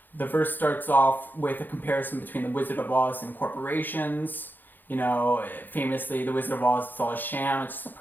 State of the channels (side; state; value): right; late; 0.089 ms